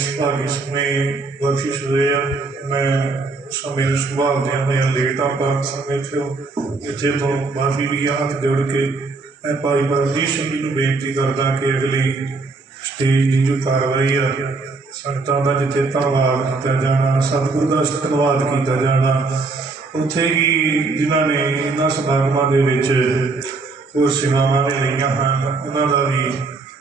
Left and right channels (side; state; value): left; quieter; 3.7 dB